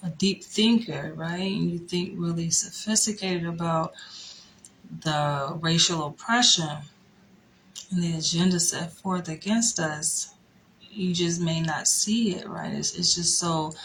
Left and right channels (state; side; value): identical; both; correlation 1.00